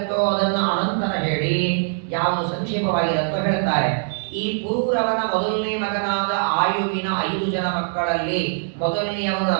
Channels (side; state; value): left; silent; digital silence